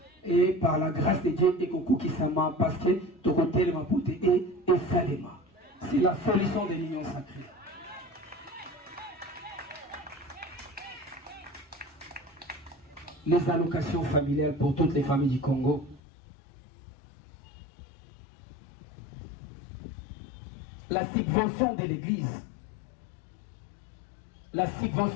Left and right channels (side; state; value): right; drops out; at 16.0 s